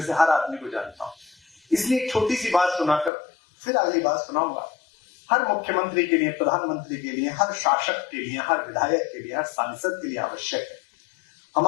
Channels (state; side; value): drops out; right; at 3.1 s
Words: से हर आदमी को जानता हूं। इसलिए एक छोटी सी बात सुनाकर फिर अगली बात सुनाऊंगा। हर मुख्यमंत्री के लिए, प्रधानमंत्री के लिए, हर शासक के लिए, हर विधायक के लिए, हर सांसद के लिए आवश्यक है।